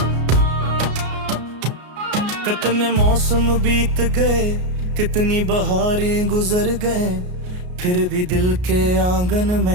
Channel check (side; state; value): left; late; 33 ms